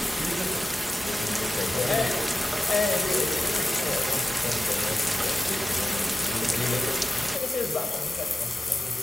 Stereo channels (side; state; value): both; normal; correlation 0.93